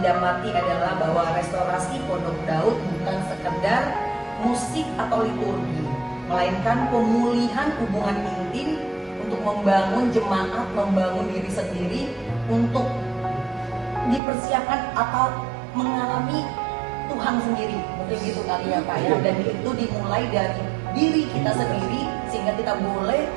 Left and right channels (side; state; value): left; drops out; at 14.2 s